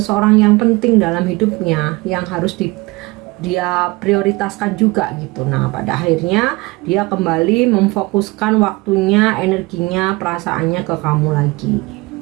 yang penting dalam hidupnya, yang harus dia prioritaskan juga gitu. Nah pada akhirnya dia kembali memfokuskan waktunya, energinya, perasaannya ke kamu lagi.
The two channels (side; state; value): left; quieter; 23.1 dB